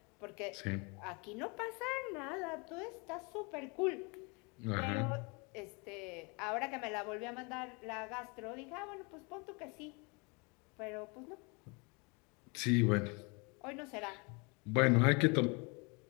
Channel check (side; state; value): right; quieter; 30.6 dB